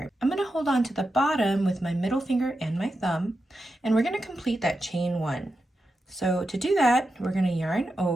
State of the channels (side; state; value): both; normal; correlation 0.89